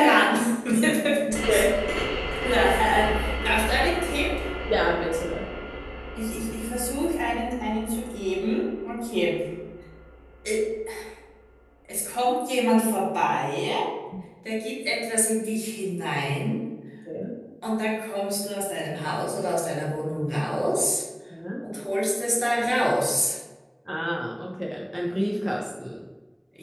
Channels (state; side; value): identical; both; correlation 1.00